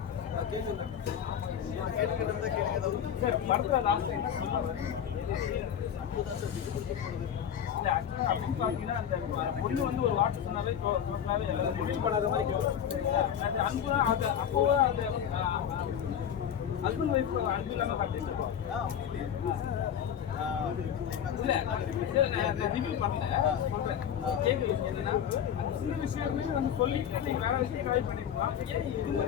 கேளுங்க ஒரு வார்த்தை சொன்னாவே பண்ணாத மாதிரி அன்பு அப்போ ஹஸ்பண்ட் ஒய்ஃப் அன்பு இல்லாம காட்டிருக்கோம். ரிவ்யூ பண்ணல சொல்றேன். கேட்குற விஷயம் என்னன்னா அந்த சின்ன விஷயமே வந்து சொல்லிட்டு நீங்க வேற விஷயம் ட்ரை பண்ணிருக்கலாம். ஏன் இது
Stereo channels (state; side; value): quieter; right; 9.0 dB